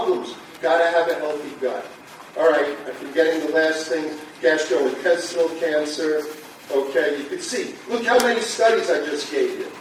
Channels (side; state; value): both; identical; correlation 1.00